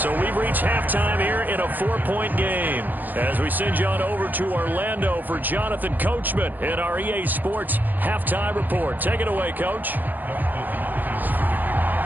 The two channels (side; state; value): left; late; 0.085 ms